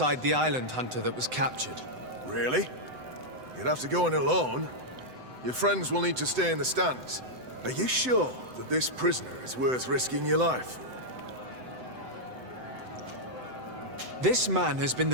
the island hunter that was captured. Really? You'd have to go in alone. Your friends will need to stay in the stands. Are you sure that this prisoner is worth risking your life for? This man has been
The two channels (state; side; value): late; left; 7.9 ms